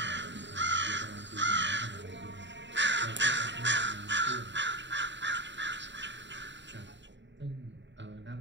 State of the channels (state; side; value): late; left; 0.53 ms